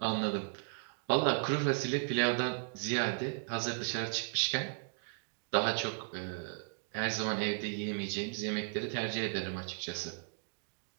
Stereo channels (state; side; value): silent; left; digital silence